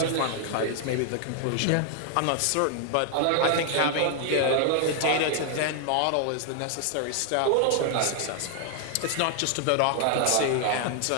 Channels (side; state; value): both; different; correlation 0.00